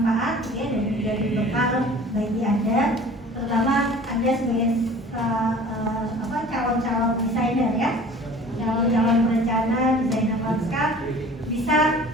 ya, dan menjadi bekal bagi Anda, terutama Anda sebagai calon-calon desainer, ya, calon-calon perencana, desainer lanskap, bisa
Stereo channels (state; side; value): normal; both; correlation 0.45